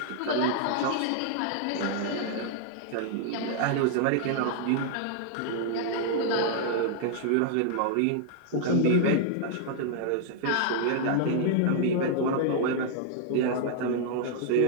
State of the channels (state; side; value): different; both; correlation -0.01